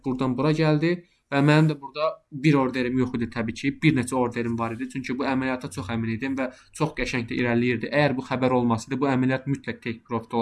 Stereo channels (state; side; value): identical; both; correlation 1.00